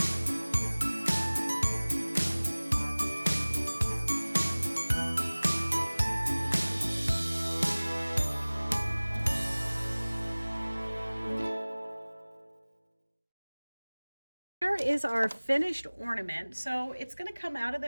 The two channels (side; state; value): both; inverted; correlation -1.00